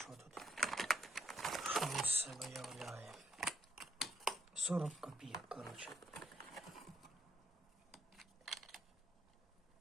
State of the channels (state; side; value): normal; both; correlation 0.72